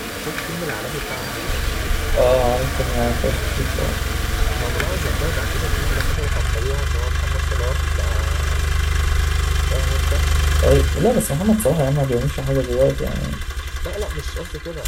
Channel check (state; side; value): identical; both; correlation 1.00